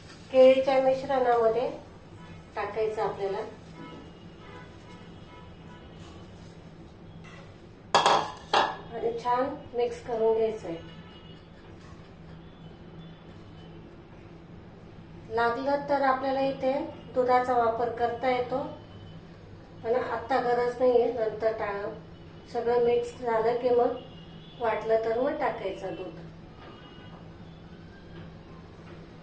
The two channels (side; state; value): both; identical; correlation 1.00